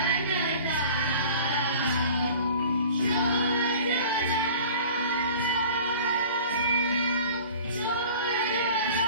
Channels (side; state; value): both; inverted; correlation -0.44